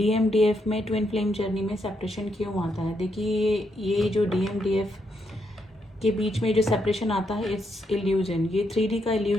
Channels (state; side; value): normal; both; correlation 0.79